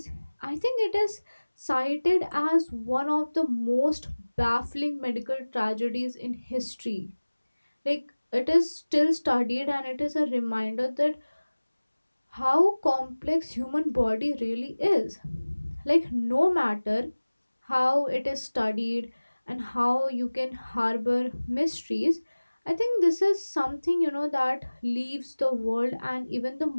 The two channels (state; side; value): inverted; both; correlation -1.00